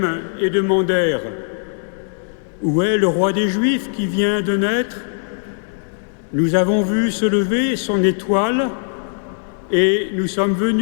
et demandèrent « Où est le roi des Juifs qui vient de naître ? Nous avons vu se lever son étoile et nous sommes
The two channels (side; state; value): right; silent; digital silence